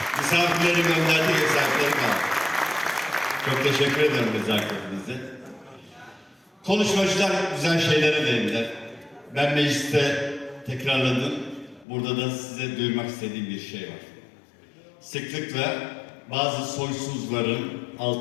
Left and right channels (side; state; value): right; drops out; at 11.9 s